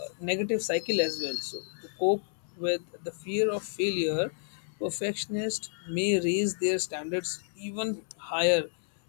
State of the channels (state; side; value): silent; right; 57 dB below the other